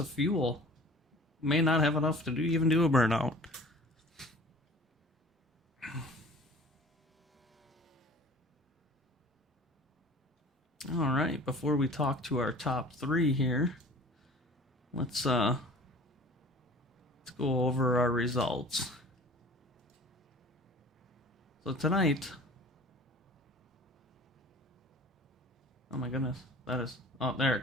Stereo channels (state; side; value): normal; both; correlation 0.46